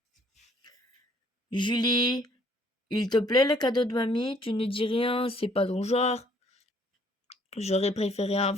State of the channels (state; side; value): normal; both; correlation 0.62